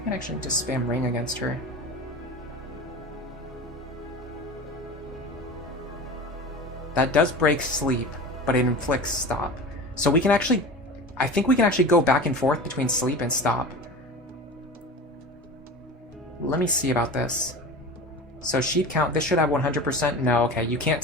actually just spam Ring against her. That does break Sleep, but it inflicts Stop. So we can actually... I think we can actually go back and forth between Sleep and Stop. Let me see about this. So sheet count, this should have 100%. No, okay, you can't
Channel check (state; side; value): normal; both; correlation 0.32